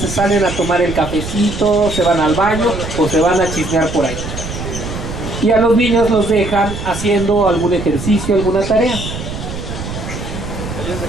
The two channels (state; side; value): noise; right; rumble, 8 dB below the sound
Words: se salen a tomar el cafecito, se van al baño o se van a chismear por ahí. Y a los niños los dejan haciendo algún ejercicio, alguna tarea.